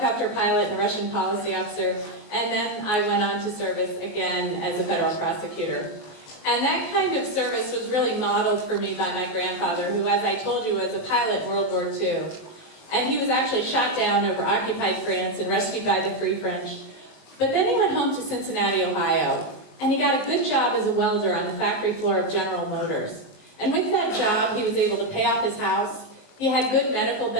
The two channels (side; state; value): right; late; 19 ms